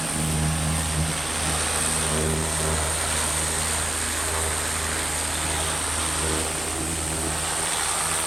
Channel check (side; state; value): right; noise; hum, 16 dB below the sound